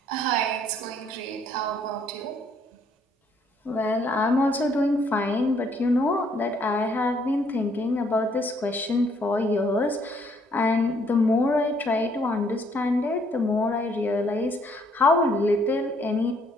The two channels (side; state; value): both; normal; correlation 0.67